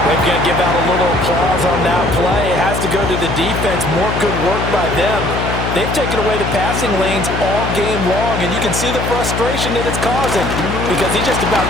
They're going to give out a little applause on that play. It has to go to the defense. More good work by them. They've taken away the passing lanes all game long, and you can see the frustration that it's causing because he just about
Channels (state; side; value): noise; left; hum, 3 dB below the sound